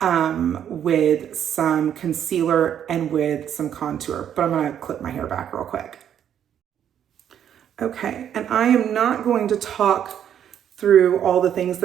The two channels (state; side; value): quieter; left; 9.5 dB